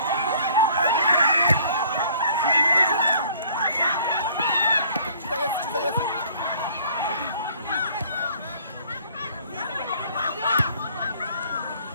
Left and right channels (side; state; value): both; inverted; correlation -0.56